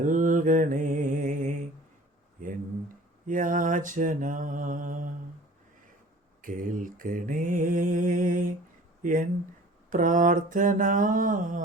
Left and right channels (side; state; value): both; normal; correlation 0.46